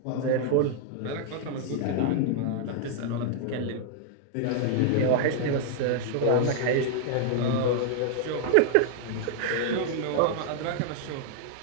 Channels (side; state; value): both; different; correlation 0.00